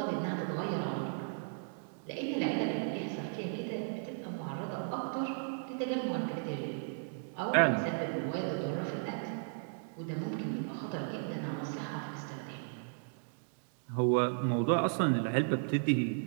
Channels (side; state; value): left; silent; digital silence